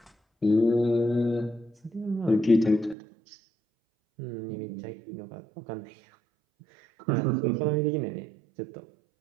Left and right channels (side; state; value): left; drops out; at 3.0 s